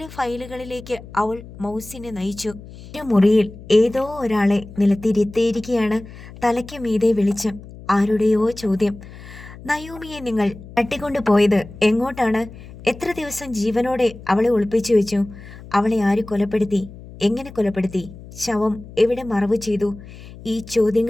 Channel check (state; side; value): noise; left; hum, 17 dB below the sound